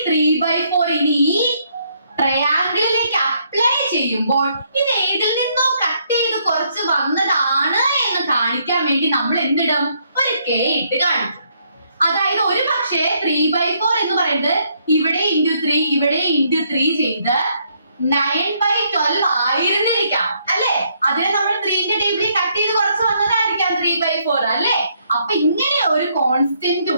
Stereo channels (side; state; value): both; inverted; correlation -0.71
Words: 3/4 ഇനി ഈ ട്രയാങ്കിളിലേക്ക് അപ്ലൈ ചെയ്യുമ്പോൾ ഇത് ഏതിൽ നിന്നോ കട്ട് ചെയ്ത് കുറച്ച് വന്നതാണ് എന്ന് കാണിക്കാൻ വേണ്ടി നമ്മൾ എന്തിടും? ഒരു കെ ഇട്ട് കാണിക്കും. അതായത് ഒരു പക്ഷേ 3/4 എന്ന് പറയുന്നത് ഇവിടെ ഇൻറ്റു 3 ഇവിടെ ഇൻറ്റു 3 ചെയ്ത് 9/12 ആയിരുന്നിരിക്കാം അല്ലെ? അതിനെ നമ്മൾ 3ന്റെ ടേബിളിൽ കട്ട് ചെയ്ത് കുറച്ച് വന്നതായിരിക്കാം 3/4 അല്ലെ? അപ്പൊ ഇങ്ങനെ ഒരു കോൺസ്റ്റന്റ്